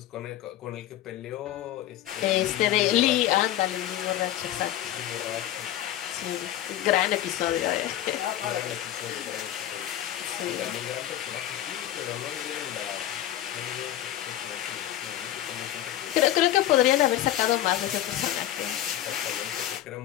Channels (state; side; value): quieter; right; 12.9 dB